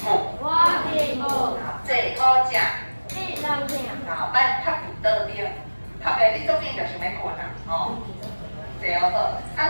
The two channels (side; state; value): both; inverted; correlation -1.00